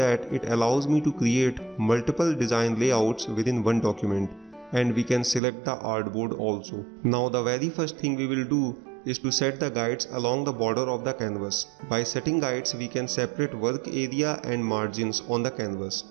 it allows me to create multiple design layouts within one document, and we can select the artboard also. Now the very first thing we will do is to set the guides along the border of the canvas. By setting guides we can separate work area and margins on the canvas.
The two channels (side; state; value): left; drops out; at 5.4 s